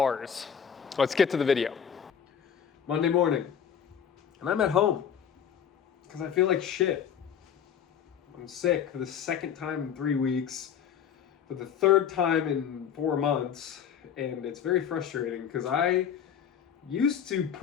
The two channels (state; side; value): quieter; right; 8.3 dB